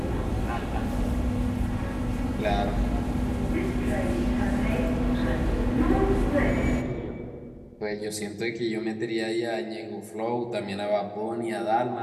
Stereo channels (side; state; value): both; identical; correlation 1.00